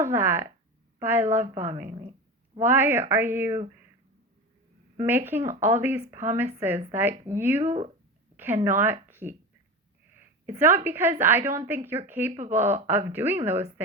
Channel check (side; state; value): both; normal; correlation 0.26